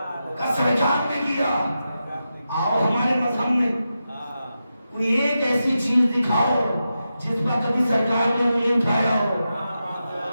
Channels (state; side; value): inverted; both; correlation -0.89